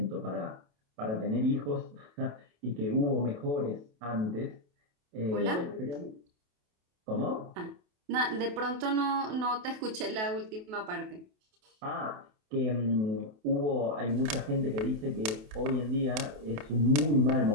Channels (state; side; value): late; left; 28 ms